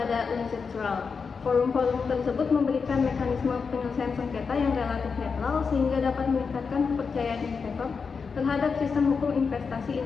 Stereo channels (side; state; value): right; quieter; 5.4 dB